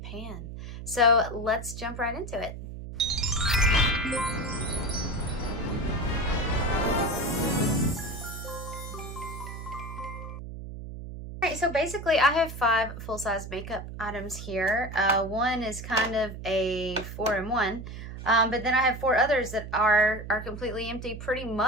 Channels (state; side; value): noise; right; hum, 10 dB below the sound